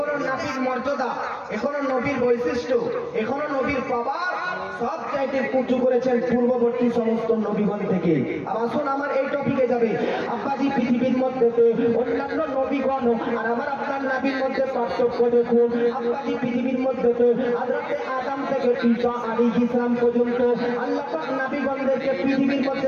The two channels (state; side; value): identical; both; correlation 1.00